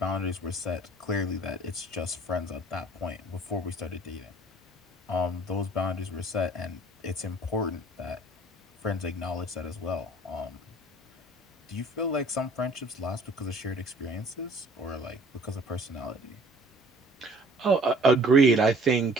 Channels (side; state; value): both; normal; correlation 0.53